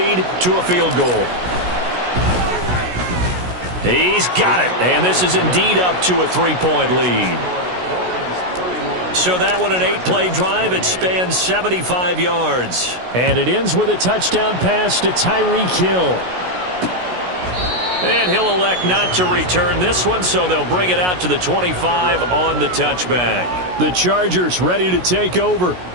to a field goal. He's got it, and this is indeed up to a 3-point lead. So that one, an 8-play drive. It spans 75 yards. And it ends with a touchdown pass to Tyreek Hill. And he'll elect not to return this one, so they'll bring it out to the 25 on the touchback. The Chargers ready to take over.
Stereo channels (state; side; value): late; left; 16 ms